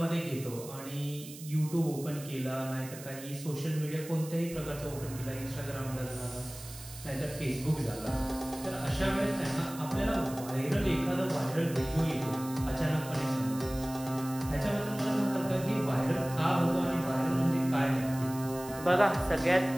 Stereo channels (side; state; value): right; noise; hiss, 15 dB below the sound